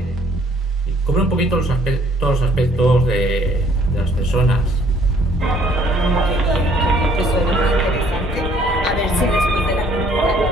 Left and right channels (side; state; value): both; normal; correlation 0.61